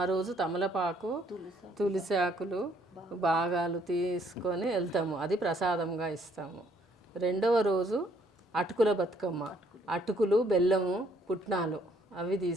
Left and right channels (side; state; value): both; normal; correlation 0.66